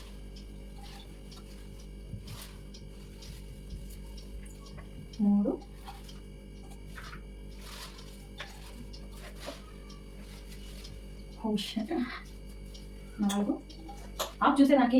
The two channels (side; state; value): both; identical; correlation 1.00